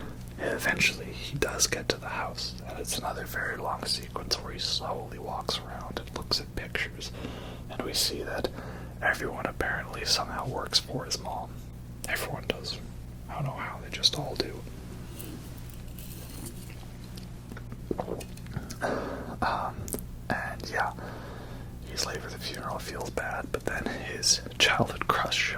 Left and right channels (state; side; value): identical; both; correlation 1.00